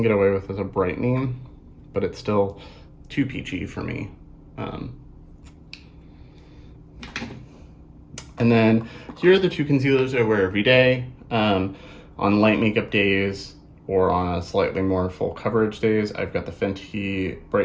get away with as a brightening, but it's still too peachy for me. And then here are the two concealers I wear every day. On light makeup days or on a slightly more full coverage days, I've got the Fenty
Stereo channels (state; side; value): identical; both; correlation 1.00